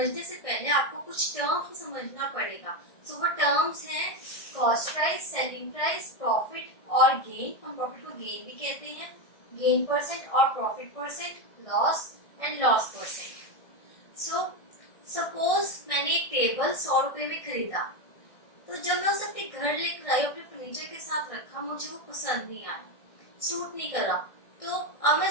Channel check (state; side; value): late; right; 1.6 ms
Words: से पहले आपको कुछ टर्म्स को समझना पड़ेगा। वो टर्म्स हैं cost price, selling price, profit और गेन। हम प्रॉफिट को गेन भी कहते हैं, गेन परसेंट और profit percent, loss and loss percent. Suppose मैंने एक टेबल 100 रुपए में खरीदा, तो जब मैं उसे अपने घर लेकर आई, अपने फर्नीचर के साथ रखा, मुझे वो पसंद नहीं आया, सूट नहीं करा, तो अब मैं